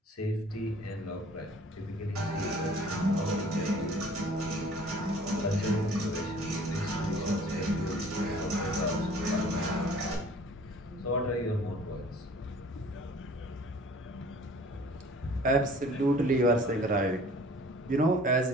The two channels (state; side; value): normal; both; correlation 0.51